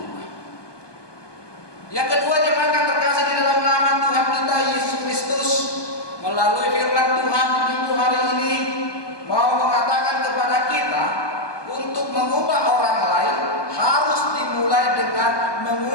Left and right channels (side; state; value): right; late; 1.2 ms